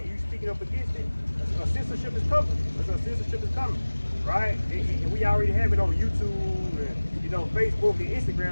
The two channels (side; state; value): both; inverted; correlation -1.00